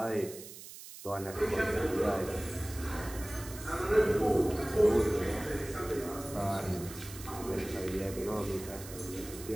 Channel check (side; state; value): right; noise; hiss, 14 dB below the sound